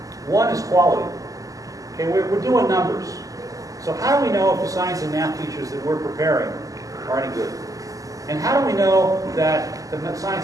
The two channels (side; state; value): left; late; 0.17 ms